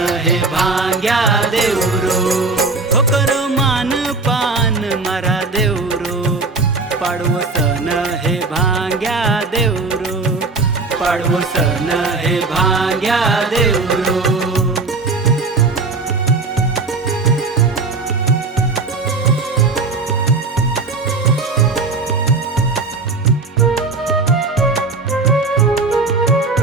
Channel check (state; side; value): quieter; left; 3.8 dB